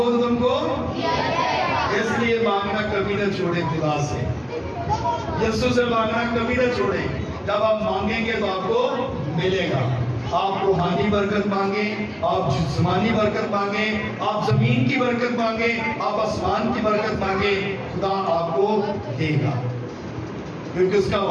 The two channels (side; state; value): both; identical; correlation 1.00